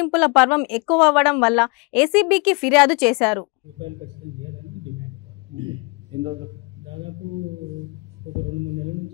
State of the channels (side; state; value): right; quieter; 30.7 dB